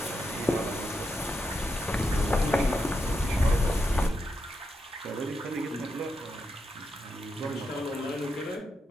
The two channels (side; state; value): both; normal; correlation 0.85